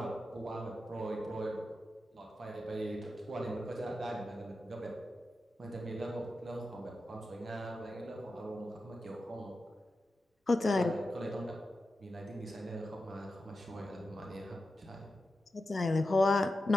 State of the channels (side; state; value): both; normal; correlation 0.91